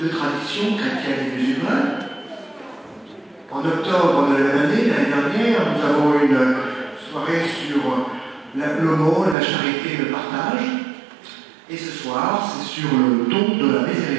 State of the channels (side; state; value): left; drops out; at 9.3 s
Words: traditions, chrétiennes et musulmanes. En octobre de la même année, l'année dernière, nous avons eu une soirée sur l'aumône, la charité, le partage. Et ce soir, c'est sur le don de la